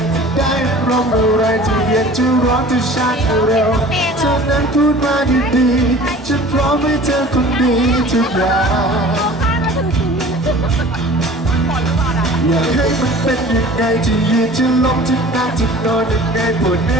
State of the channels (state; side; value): normal; both; correlation 0.44